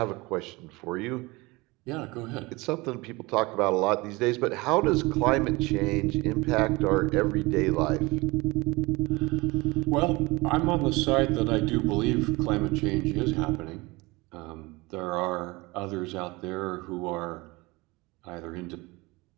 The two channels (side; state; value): left; quieter; 23.3 dB